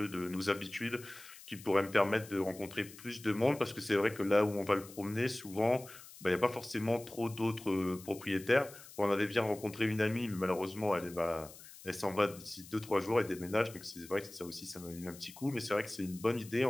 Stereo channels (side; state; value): left; noise; hiss, 18 dB below the sound